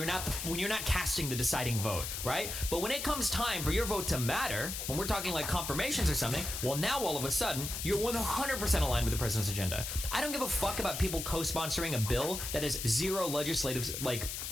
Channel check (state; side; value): noise; left; hiss, 5 dB below the sound